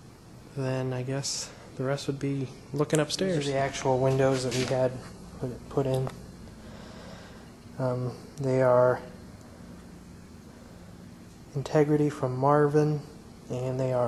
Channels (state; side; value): identical; both; correlation 1.00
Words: then I guess the rest would be looking upstairs. These are the actual windows that we had put in. They are Integrity from Marvin, and they